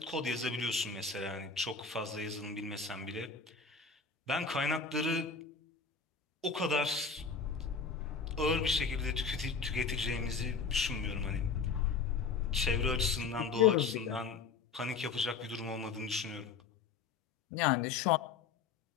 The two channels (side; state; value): right; quieter; 5.1 dB